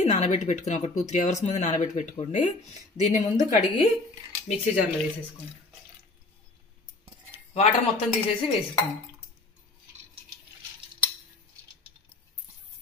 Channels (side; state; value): right; quieter; 3.1 dB